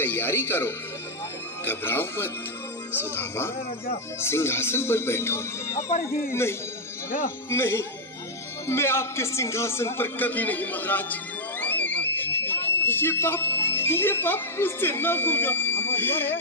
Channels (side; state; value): both; normal; correlation -0.04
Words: करो। घबराओ मत। सुदामा, सिंहासन पर बैठो। नहीं, नहीं, मैं आपके सिंहासन पर कभी नहीं महाराज। ये पाप मुझसे न होगा।